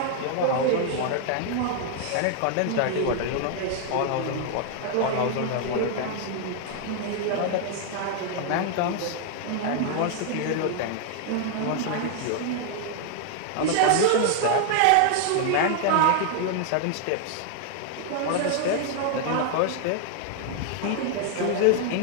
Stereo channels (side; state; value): both; different; correlation 0.00